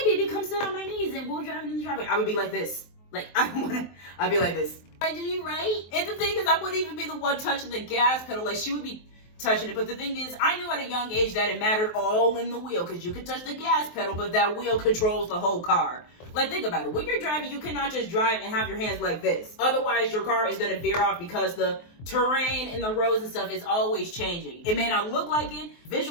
baby, come sit on my knees and we'll drive in the driveway, I would be like this. Like, I'd be like this. I do you right? And the thing is, I wouldn't even be the one touching the gas pedal. Like, she would be touching it. But the thing is, I knew at a young age that it mattered all in the wheel, because you could touch the gas pedal, but that wheel controls the whole car. Like, think about it. When you're driving, you cannot just drive and have your hands like this. Otherwise, your car is going to veer off, because the terrain and the roads and stuff is always changing. It may not look like it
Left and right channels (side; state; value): right; late; 23 ms